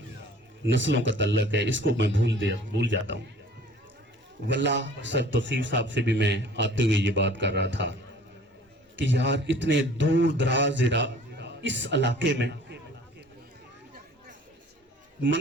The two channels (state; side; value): normal; both; correlation 0.50